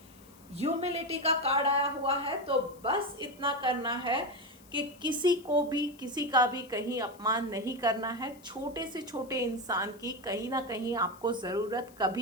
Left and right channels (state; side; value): noise; left; hiss, 25 dB below the sound